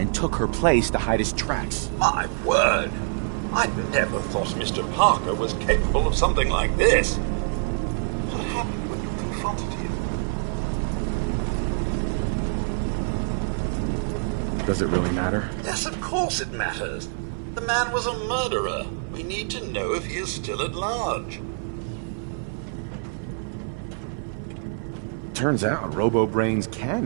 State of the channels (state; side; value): silent; left; digital silence